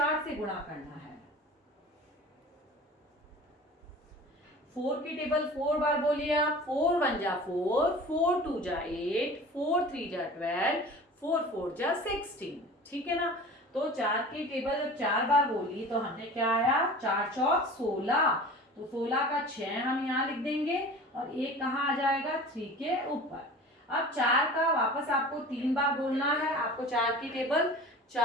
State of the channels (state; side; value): normal; both; correlation 0.39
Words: से गुणा करना है। 4 की टेबल 4 बार बोलिए आप, 4 1 जा 4, 4 2 जा 8, 4 3 जा 12, 4 4 जा 16। ठीक है ना, तो 4 की टेबल जब 4 बार बोली तो हमने क्या आया, 4 चौक 16, तो 16 का 6 हम यहाँ लिख देंगे और 1 कहाँ आ जाएगा, 3 के ऊपर। अब 4 का वापस आपको 3 बार बोलना है। आपको 4 की टेबल